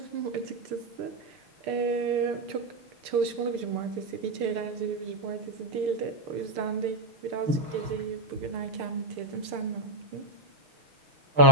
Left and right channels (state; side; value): late; left; 6.8 ms